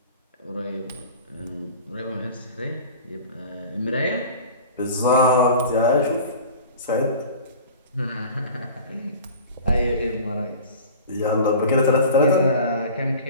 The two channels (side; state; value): both; inverted; correlation -0.40